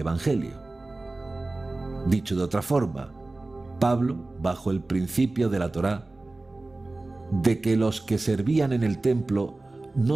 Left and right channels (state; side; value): quieter; left; 3.0 dB